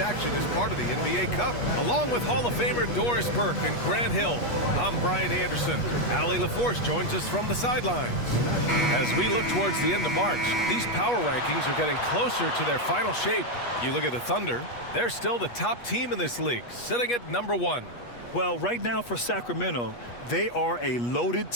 is part of the NBA Cup. Along with Hall of Famer Doris Burke and Grant Hill, I'm Brian Anderson. Allie LaForce joins us from the sidelines. As we look towards the end of March, these power rankings are getting closer to their final shape. You look at the Thunder, they're still the top team in this league, sitting at #1. Well, right now for Sacramento, they are a loaded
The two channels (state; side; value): late; right; 8.3 ms